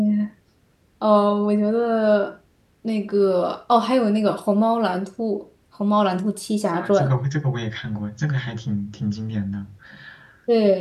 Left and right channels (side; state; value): both; identical; correlation 1.00